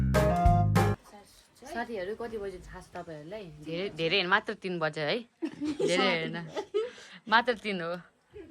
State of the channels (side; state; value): both; identical; correlation 1.00